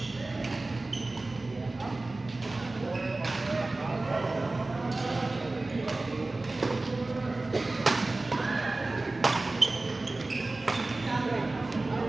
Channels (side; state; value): left; quieter; 3.1 dB